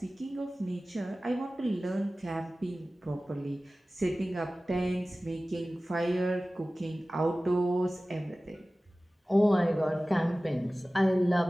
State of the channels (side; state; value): both; normal; correlation 0.97